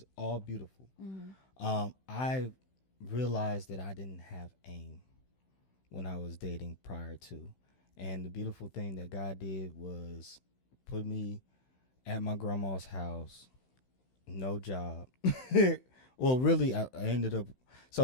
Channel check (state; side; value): late; right; 16 ms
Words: all beautiful. I realized that I didn't have aim when I was dating prior to. And the beautiful thing that God did was put me at my grandma's house, no job. Well, really, I ended up,